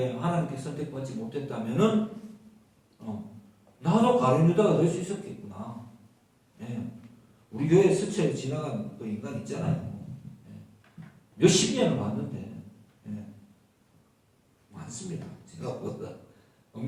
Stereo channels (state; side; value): identical; both; correlation 1.00